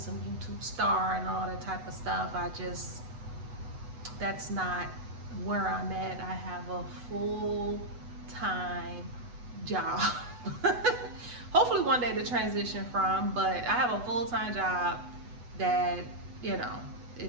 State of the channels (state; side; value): late; left; 8.1 ms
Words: YouTube star and all that type of stuff. That's not where I'm at. I have a full-time job. Hopefully one day to transition from, but I have a full-time job that,